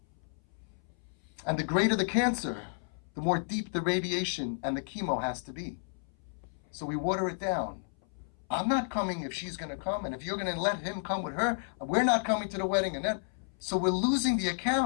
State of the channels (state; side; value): silent; right; 56 dB below the other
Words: And the greater the cancer, the more deep the radiation and the chemo has to be. So we water it down. I'm not coming if she's going to come, and if you're going to let him come with her, we're not coming to the wedding. And then, so we're losing the